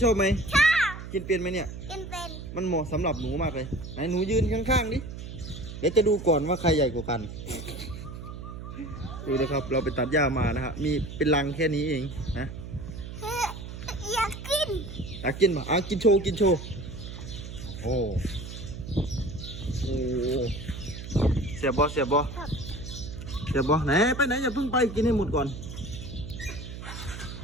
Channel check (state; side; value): noise; right; hum, 10 dB below the sound